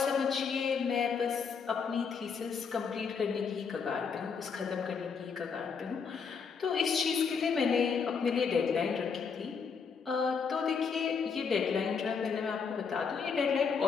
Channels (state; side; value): quieter; right; 5.9 dB